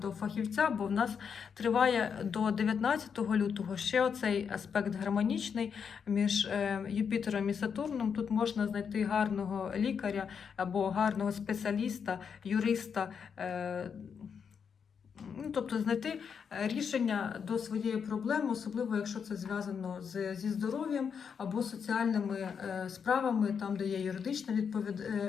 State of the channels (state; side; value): quieter; right; 6.7 dB